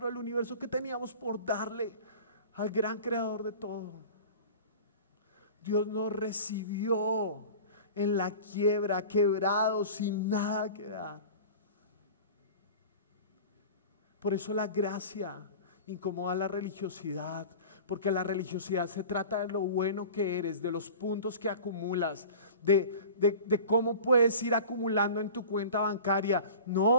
del universo, ¿qué teníamos por darle al gran creador de todo? Dios nos recibió en la quiebra, quebrados, sin nada que dar. Por eso la gracia incomoda la religiosidad, porque la religiosidad se trata de lo bueno que eres, de los puntos que acumulas, de cómo puedes ir acumulando en tu cuenta bancaria.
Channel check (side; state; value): both; inverted; correlation -0.38